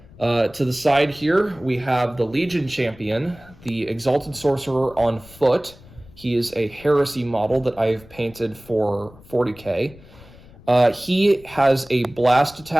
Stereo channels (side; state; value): left; noise; rumble, 22 dB below the sound